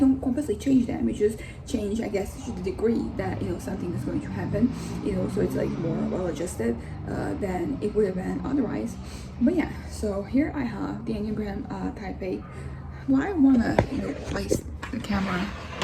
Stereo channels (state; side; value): identical; both; correlation 1.00